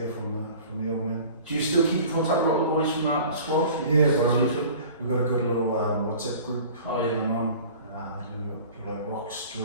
from the old man. Do you still keep in contact with all the boys from that squad? Yeah, bro. We've got a good little WhatsApp group going on. People like Rox,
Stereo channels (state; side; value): inverted; both; correlation -0.44